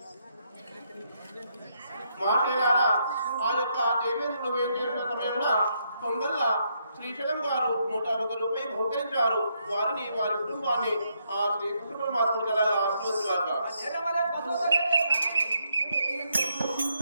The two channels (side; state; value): both; inverted; correlation -0.77